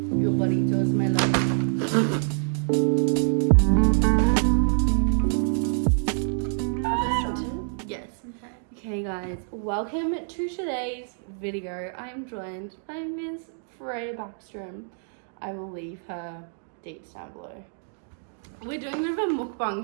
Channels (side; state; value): left; silent; digital silence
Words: burritos, my love. Yes. Okay guys, welcome to today's video. I'm joined by Miss Freya Backstrom. I will leave her dates down below. We're doing a bit of a